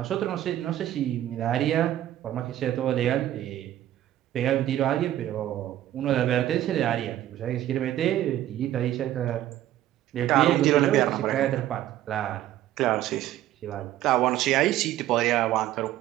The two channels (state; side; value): quieter; left; 13.2 dB